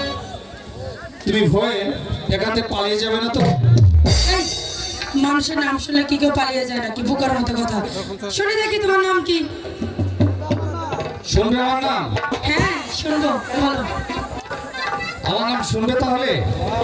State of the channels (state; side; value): identical; both; correlation 1.00